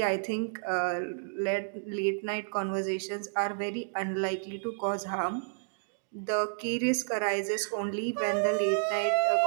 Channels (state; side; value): silent; left; digital silence